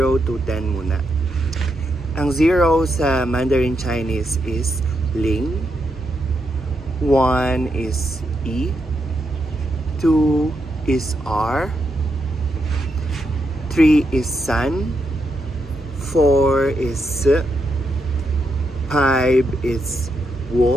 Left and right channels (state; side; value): normal; both; correlation 0.82